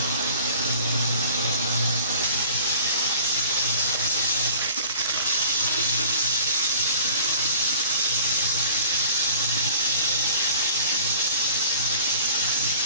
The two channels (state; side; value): inverted; both; correlation -0.47